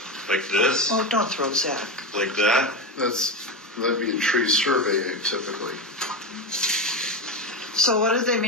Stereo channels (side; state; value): both; normal; correlation 0.16